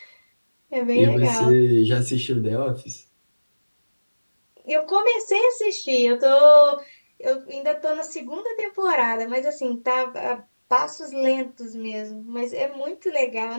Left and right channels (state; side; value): inverted; both; correlation -1.00